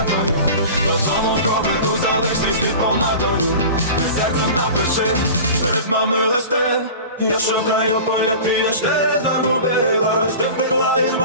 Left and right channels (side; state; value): both; inverted; correlation -0.36